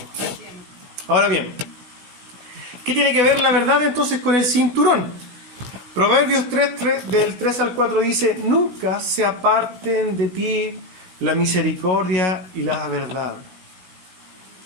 Ahora bien, ¿qué tiene que ver la verdad entonces con el cinturón? Proverbios 3, del 3 al 4 dice, nunca se aparten de ti la misericordia y la verdad.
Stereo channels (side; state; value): left; late; 16 ms